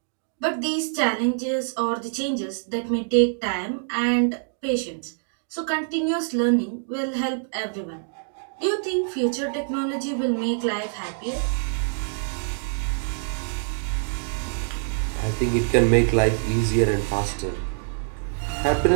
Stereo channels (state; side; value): silent; left; digital silence